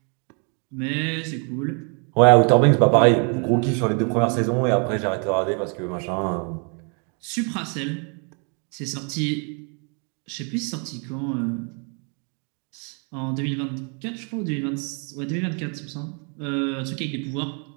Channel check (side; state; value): left; quieter; 38.2 dB